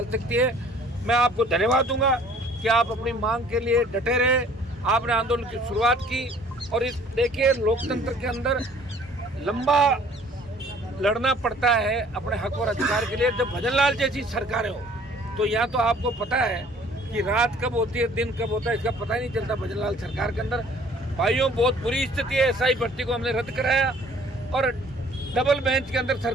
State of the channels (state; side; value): normal; both; correlation 0.55